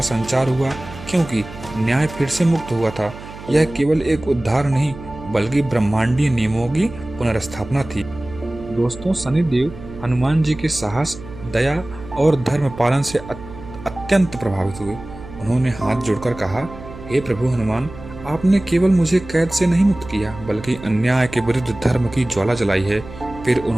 संचार हुआ, क्योंकि न्याय फिर से मुक्त हुआ था। यह केवल एक उद्धार नहीं बल्कि ब्रह्मांडीय नियमों की पुनर्स्थापना थी। दोस्तों, शनिदेव हनुमान जी के साहस, दया और धर्म पालन से अत्यंत प्रभावित हुए। उन्होंने हाथ जोड़कर कहा, हे प्रभु हनुमान, आपने केवल मुझे कैद से नहीं मुक्त किया बल्कि अन्याय के विरुद्ध धर्म की ज्वाला जलाई है। फिर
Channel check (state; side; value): noise; right; hum, 15 dB below the sound